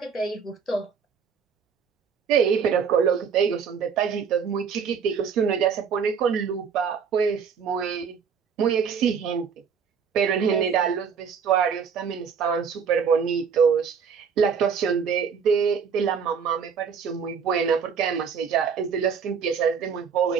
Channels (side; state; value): left; quieter; 6.6 dB